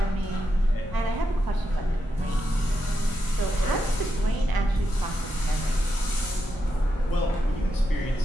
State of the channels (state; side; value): normal; both; correlation 0.85